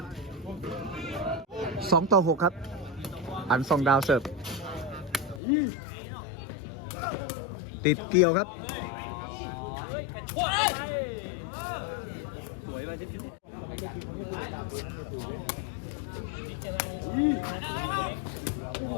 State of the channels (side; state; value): right; drops out; at 5.4 s